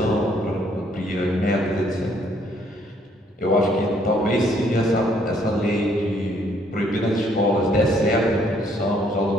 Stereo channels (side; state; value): both; normal; correlation 0.66